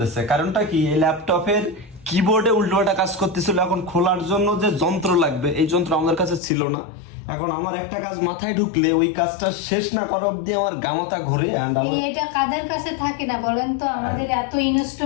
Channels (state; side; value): drops out; right; at 6.4 s